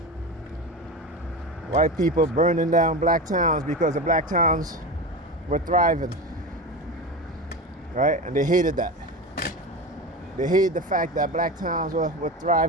White people burning down black towns because the black towns were thriving, right? And they hated that. They hated the fact that black towns were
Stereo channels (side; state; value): both; normal; correlation 0.24